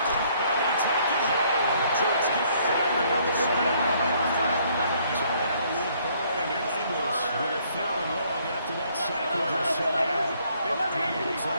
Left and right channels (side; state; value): both; inverted; correlation -0.65